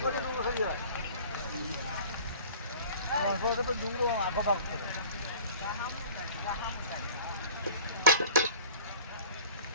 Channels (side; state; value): both; inverted; correlation -0.45